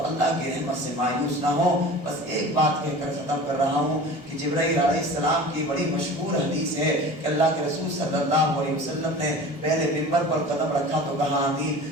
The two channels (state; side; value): normal; both; correlation 0.38